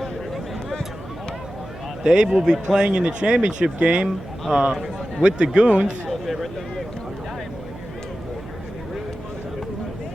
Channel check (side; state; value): right; noise; hum, 15 dB below the sound